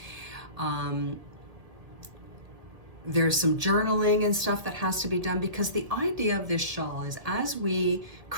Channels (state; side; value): late; left; 1.7 ms